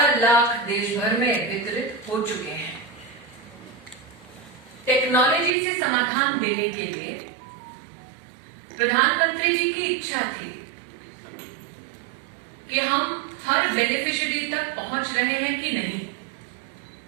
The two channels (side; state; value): left; drops out; at 5.5 s